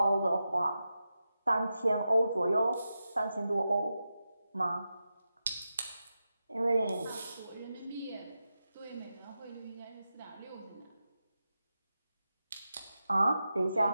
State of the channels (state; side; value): inverted; both; correlation -0.90